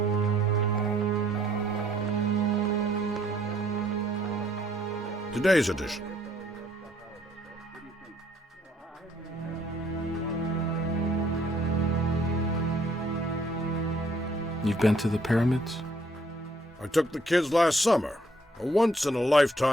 Today's edition. You've been to the pyramids? I took the kids last summer. A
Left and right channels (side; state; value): both; normal; correlation 0.65